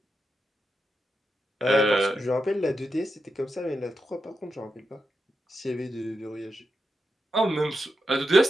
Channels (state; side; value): normal; both; correlation 0.87